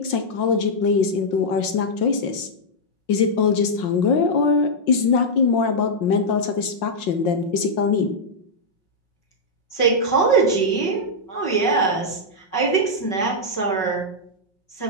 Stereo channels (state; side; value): late; right; 5.6 ms